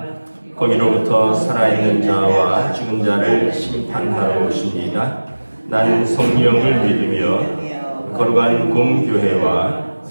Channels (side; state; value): both; inverted; correlation -1.00